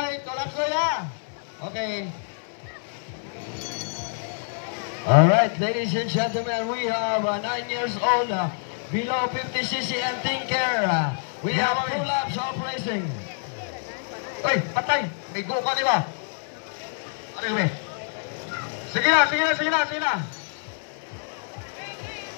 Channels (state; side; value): silent; right; 61 dB below the other